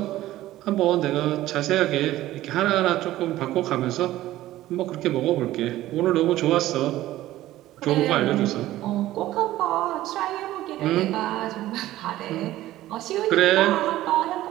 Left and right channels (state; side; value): quieter; left; 15.2 dB